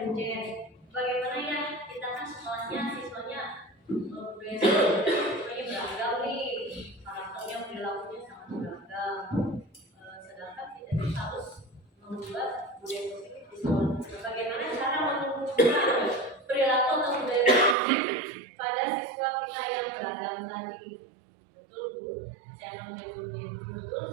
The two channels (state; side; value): drops out; left; at 17.8 s